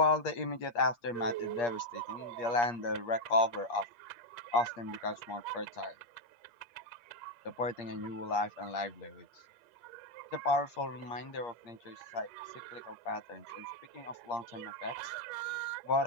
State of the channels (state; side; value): late; right; 8.5 ms